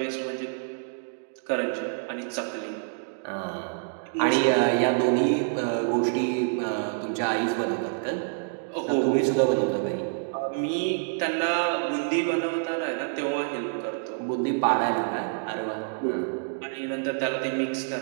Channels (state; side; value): silent; left; digital silence